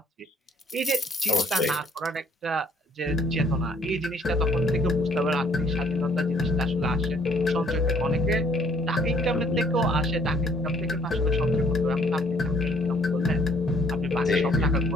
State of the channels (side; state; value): both; normal; correlation 0.62